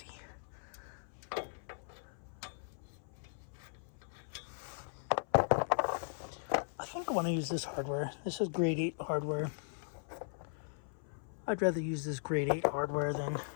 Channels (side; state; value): right; silent; 52 dB below the other